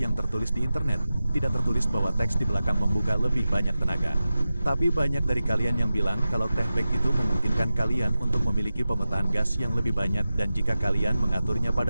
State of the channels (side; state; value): both; inverted; correlation -0.93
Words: tertulis di internet, tidak tertulis bahwa teks di belakang membuka lebih banyak tenaga. Tapi banyak dari kalian yang bilang kalau techback itu memungkinkan kalian untuk memiliki pemetaan gas yang lebih banyak dan jika kalian mengaturnya